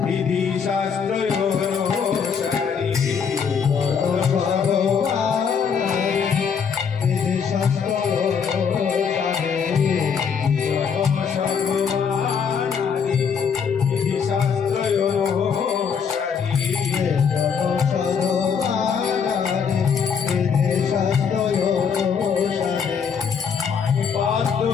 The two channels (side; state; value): right; quieter; 6.6 dB